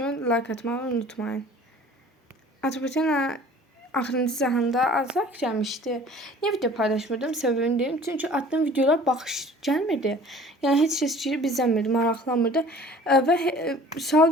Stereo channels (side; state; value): both; normal; correlation 0.48